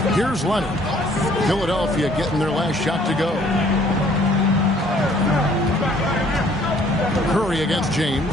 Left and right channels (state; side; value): normal; both; correlation 0.59